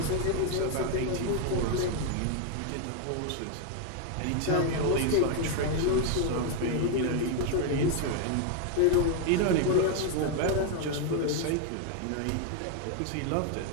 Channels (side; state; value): both; different; correlation 0.01